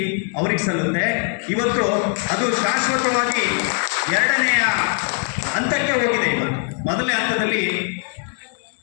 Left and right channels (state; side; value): quieter; right; 38.7 dB